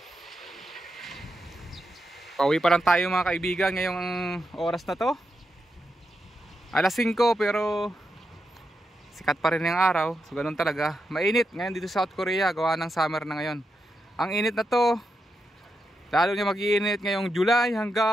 Pauwi pa lang tayo mga kaibigan ngayong oras na to. Alas 5 pero sikat pa rin yung araw. So ganun talaga. Mainit ngayon dito sa South Korea. Gawa ng summer na ngayon. Ang init na to. Lalo niya mag-iinit ngayong July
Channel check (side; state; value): both; normal; correlation 0.86